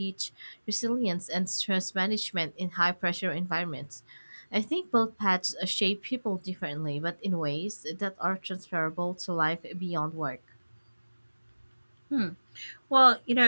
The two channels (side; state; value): both; inverted; correlation -1.00